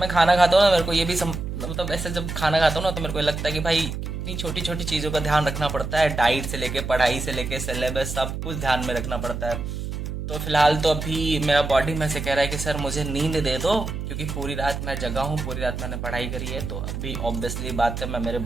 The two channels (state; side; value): noise; right; hum, 5 dB below the sound